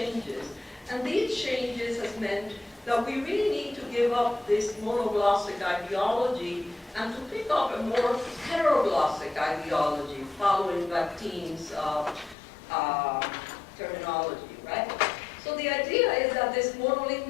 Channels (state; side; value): drops out; right; at 12.4 s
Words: and these changes has meant that we really need to give up this monoglossic ideology and to pick up a more heteroglossic ideology following Bakhtin's terminology, right? So the idea is that this